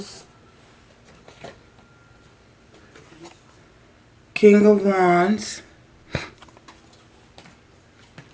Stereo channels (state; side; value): identical; both; correlation 1.00